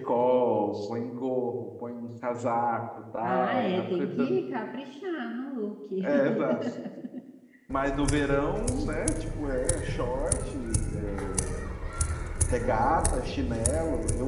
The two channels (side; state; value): both; identical; correlation 1.00